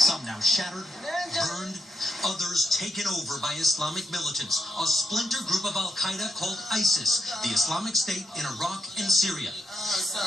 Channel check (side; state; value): both; normal; correlation 0.82